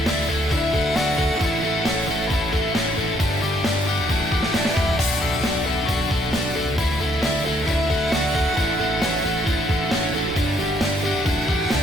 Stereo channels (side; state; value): right; noise; rumble, 13 dB below the sound